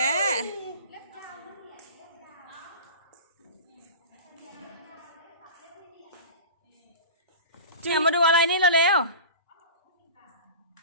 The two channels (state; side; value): inverted; both; correlation -0.34